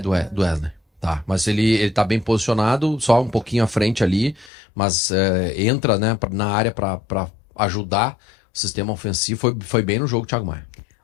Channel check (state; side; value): drops out; right; at 4.5 s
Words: Wesley. Tá, mas ele tá bem posicionado, só um pouquinho à frente ali, mas entra, né, na área para ajudar o sistema ofensivo. Foi bem no jogo, Thiago Maia.